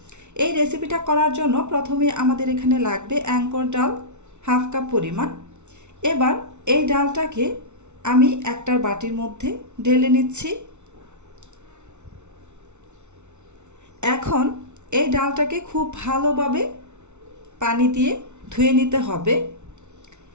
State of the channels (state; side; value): late; left; 0.82 ms